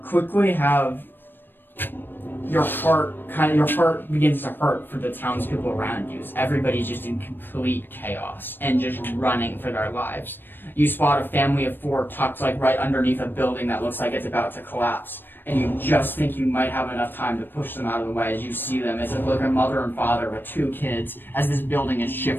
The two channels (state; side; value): late; right; 0.095 ms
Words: quickly have your heart begins to hurt for the townspeople around you. Everybody's just in complete chaos and just running for their lives. You spot a family of 4 tucked right underneath a building that looks like it's about to collapse. And you just think you might have enough time to push them out of the way as you see them. It's like a mother and father with 2 kids as this building is